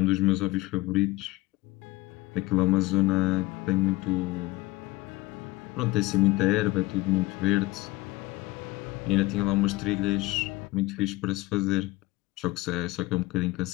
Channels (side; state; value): right; quieter; 19.7 dB